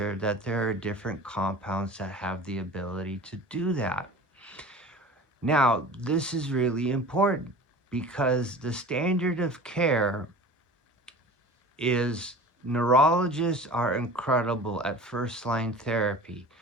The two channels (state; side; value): normal; both; correlation 0.39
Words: that there are different compounds that have the ability to do that. Now, this is really important because the standard of care is neurologists are incredible at first-line therapy,